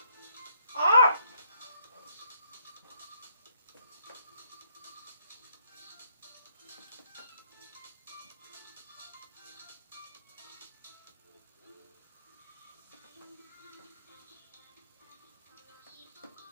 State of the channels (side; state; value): both; inverted; correlation -0.70